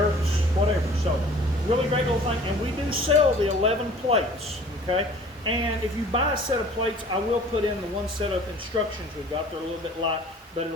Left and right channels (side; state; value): both; normal; correlation 0.48